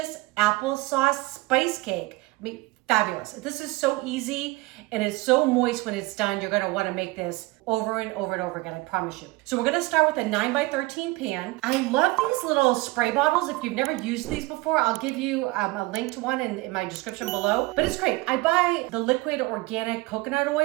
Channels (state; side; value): quieter; left; 22.0 dB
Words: applesauce spice cake. I mean, fabulous. This is so easy and it's so moist when it's done. You're gonna wanna make this over and over and over again, I promise you. So we're gonna start with a 9x13 pan. I love these little spray bottles. If you've never used these before, I'll give you a link to one in my description below. But it's great. I buy the liquid organic coconut